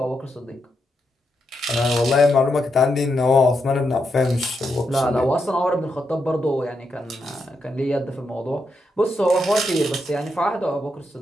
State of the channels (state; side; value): normal; both; correlation 0.83